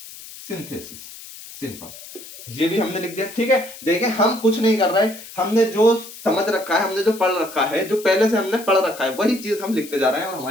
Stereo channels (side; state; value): left; noise; hiss, 15 dB below the sound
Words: simple, ये भी हमने लिख दिया, ठीक है। देखिए हम कुछ नहीं कर रहे, हमने जो समझ रखा है, हमने जो पढ़ रखा है, जो पहले से हमने पढ़ रखा है, वही चीज हम लिखते जा रहे हैं और